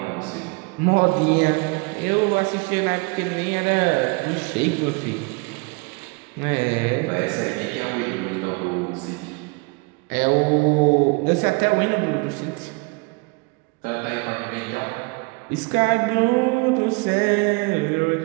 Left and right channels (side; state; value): left; quieter; 29.8 dB